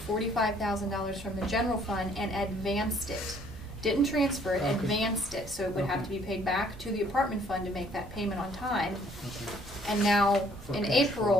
$45,000 from the general fund and advanced it. Didn't transfer it, Okay. advanced it, so it would have to Okay. be paid back to the apartment fund to make that payment on time. okay. And now, For in cash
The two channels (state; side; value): normal; both; correlation 0.61